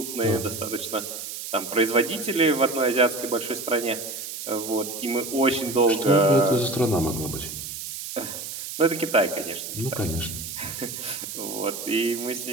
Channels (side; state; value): right; noise; hiss, 8 dB below the sound